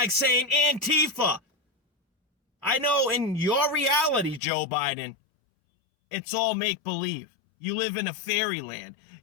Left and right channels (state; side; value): drops out; right; at 4.4 s